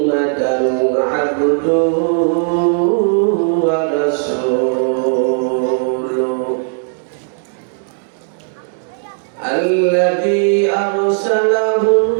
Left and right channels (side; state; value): left; silent; digital silence